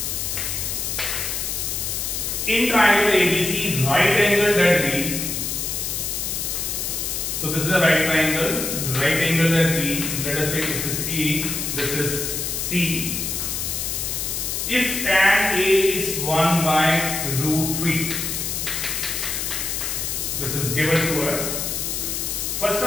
In triangle ABC, right angle ZB. So this is a right triangle ZB. Let us take this is A, this is C. If tan A is 1 by root 3, this is given to us. First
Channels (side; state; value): left; noise; hiss, 2 dB below the sound